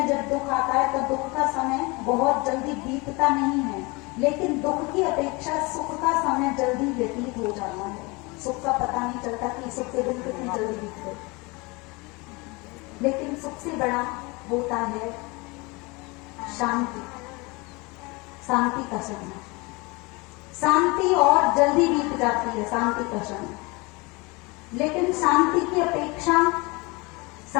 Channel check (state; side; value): quieter; right; 26.2 dB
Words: जब दुख आता है तो दुख का समय बहुत जल्दी बीतता नहीं है, लेकिन दुख की अपेक्षा सुख का समय जल्दी व्यतीत हो जाता है। सुख का पता नहीं चलता कि सुख के दिन कितनी जल्दी बीत गए, लेकिन सुख से बड़ा होता है शांति, शांति का समय। शांति और जल्दी बीत जाती है, शांति का समय, लेकिन शांति की अपेक्षा